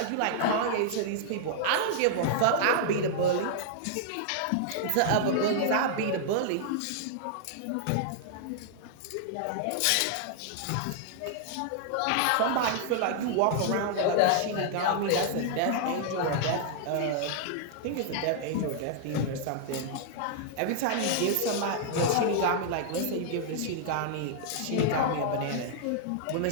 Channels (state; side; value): different; both; correlation -0.01